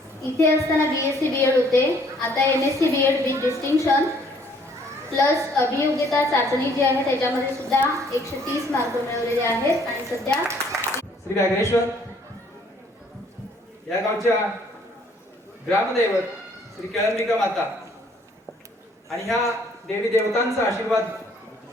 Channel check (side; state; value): both; normal; correlation 0.62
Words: इथे असताना BSc BEd होते. आता MSc BEd with distinction plus अभियोग्यता चाचणी जी आहे त्याच्यामध्ये सुद्धा 130 मार्क मिळवलेले आहेत. आणि सध्या श्री व्याघ्रेश्वर या गावच्या ग्रामदैवत श्री केळंबिका माता आणि ह्या देवी देवतांचा आशीर्वाद